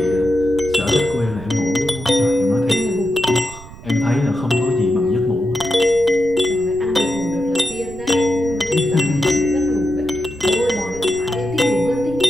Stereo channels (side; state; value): right; noise; rumble, 17 dB below the sound